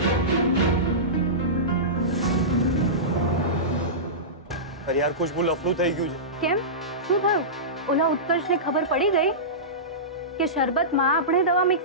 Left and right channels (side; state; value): both; normal; correlation -0.19